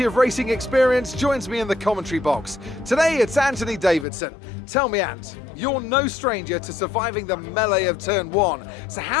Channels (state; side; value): drops out; right; at 4.0 s